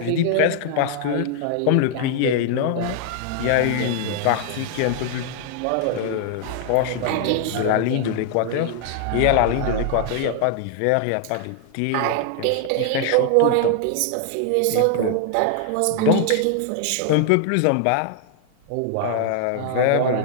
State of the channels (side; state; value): both; different; correlation 0.00